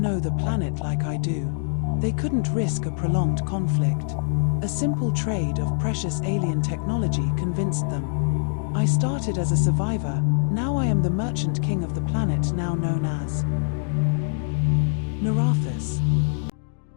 the planet like I do. They couldn't risk a prolonged conflict. A simple trade of precious alien technology convinced them. I started as a survivor, now I am the merchant king of the planet now known as Nerathus.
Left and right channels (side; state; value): right; silent; digital silence